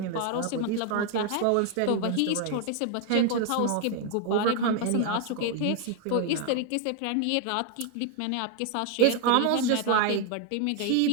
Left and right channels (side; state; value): both; different; correlation 0.00